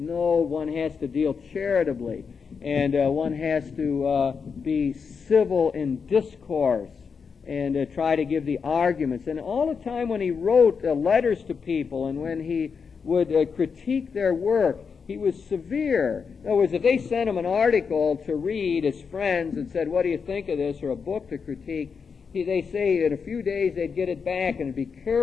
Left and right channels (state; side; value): quieter; right; 5.8 dB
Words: has to deal charitably, and one has to be civil in discourse and try to give the arguments. And all the time when he wrote letters to people and when he would critique their work, he was severe. In other words, if they sent him an article to read as friends and said, what do you think of this, or a book to critique, they say in a few days they'd get it back and it'd be